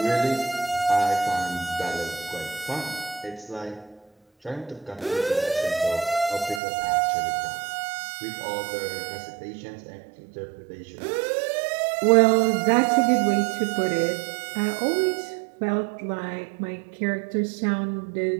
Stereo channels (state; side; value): drops out; left; at 6.6 s